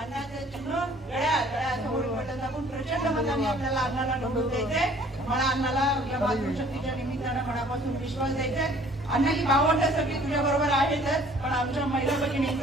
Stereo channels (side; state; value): both; normal; correlation 0.55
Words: चिन्ह घड्याळासमोर बटन दाबून प्रचंड मताने आपल्याला अण्णाला निवडून द्यायचंय. मला अण्णाला या मातृशक्तीच्या निमित्तानं मनापासून विश्वास द्यायचाय. अण्णा ही भावंड सगळी तुझ्या बरोबर आहेतच, पण आमच्या महिला